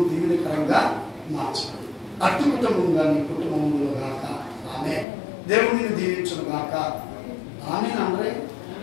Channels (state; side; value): drops out; right; at 5.1 s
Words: దీవెనకరంగా మార్చుకుంది. అటు కుటుంబంగా నీ కుటుంబంలో గాక. ఆమె దేవుడిని దీవించును గాక. ఆమె అందరే